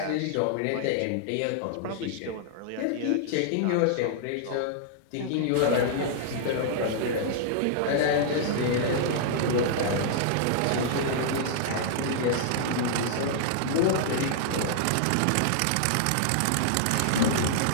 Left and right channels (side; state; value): both; different; correlation -0.01